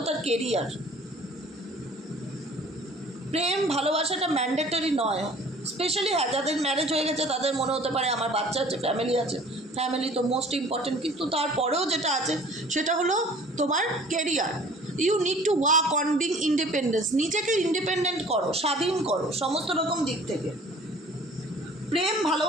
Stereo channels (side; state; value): both; normal; correlation 0.50